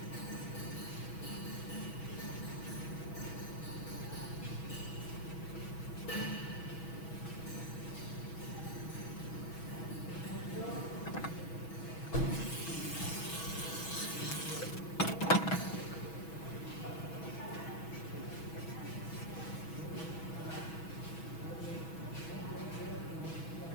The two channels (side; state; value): right; late; 6.2 ms